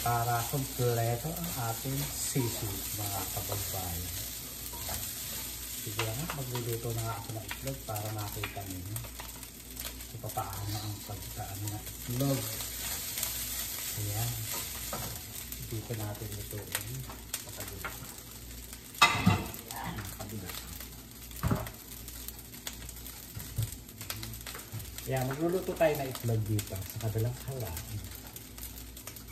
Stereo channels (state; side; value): identical; both; correlation 1.00